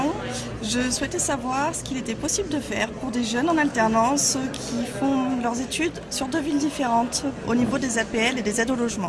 Je souhaitais savoir ce qu'il était possible de faire pour des jeunes en alternance qui font leurs études sur deux villes différentes au niveau des APL et des aides au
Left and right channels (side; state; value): both; identical; correlation 1.00